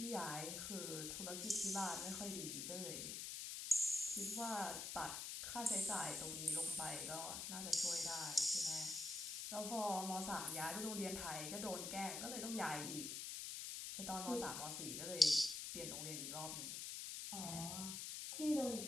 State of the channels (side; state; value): left; noise; hiss, 4 dB below the sound